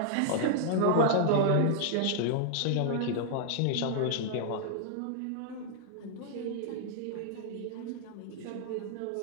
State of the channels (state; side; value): different; both; correlation -0.01